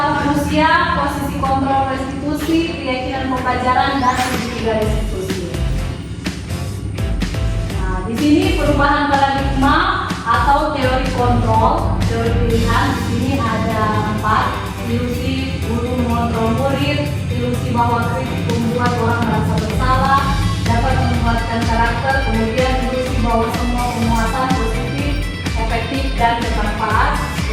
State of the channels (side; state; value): both; identical; correlation 1.00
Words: manusia, posisi kontrol restitusi, keyakinan pembelajaran, dan segitiga restitusi. Nah, di sini perubahan paradigma atau teori kontrol, teori pilihan. Di sini ada 4: ilusi guru mengontrol murid, ilusi bahwa kritik membuat orang merasa bersalah, dapat menguatkan karakter, kemudian ilusi bahwa semua penguatan positif, efektif, dan bermanfaat,